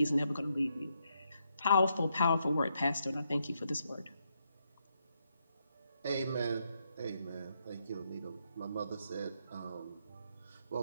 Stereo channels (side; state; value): both; inverted; correlation -0.79